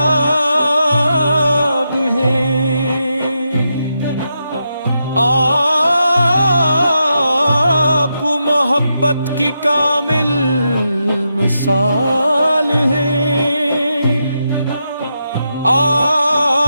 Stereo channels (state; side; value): inverted; both; correlation -0.85